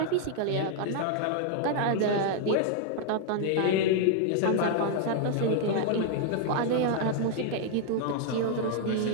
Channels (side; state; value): both; different; correlation 0.00